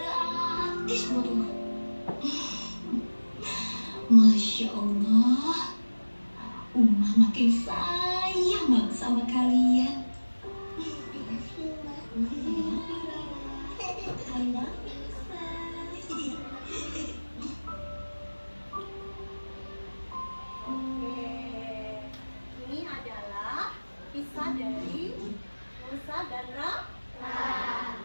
buat Uma. Masya Allah, Uma makin sayang banget sama kalian. Makasih, Mbak. I love you. Oke, ini adalah kisah dari Musa dan Rara. Nah,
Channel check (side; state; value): both; inverted; correlation -1.00